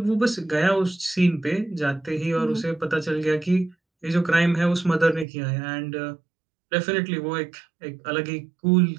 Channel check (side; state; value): left; drops out; at 5.2 s